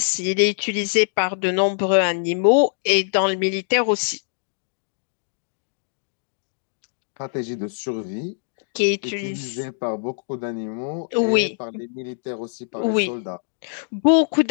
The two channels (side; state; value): right; silent; digital silence